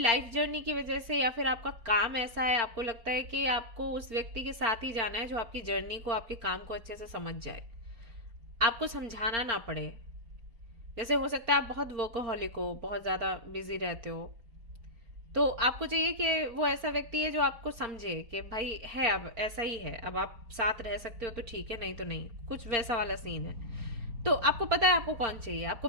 जर्नी की वजह से या फिर आपका काम ऐसा है, आपको लगता है कि आपको उस व्यक्ति के साथ ही जाना है जो आपकी जर्नी को, आपके काम को अच्छे से समझ जाए, आपको समझाना ना पड़े। जैसे हो सकता है आप बहुत वर्कोहॉलिक हो, बहुत ज्यादा बिजी रहते हो, तो आपको चाहिए कि वो ऐसा व्यक्ति है जो आपको समझे कि भाई है, अब ऐसा ही है, अब आप साथ रह सकते हो तो ठीक है, नहीं तो नहीं, कुछ वैसा वाला सीन है। तो आपको पता है आपको कौन चाहिए, आपको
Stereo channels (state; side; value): late; left; 4.4 ms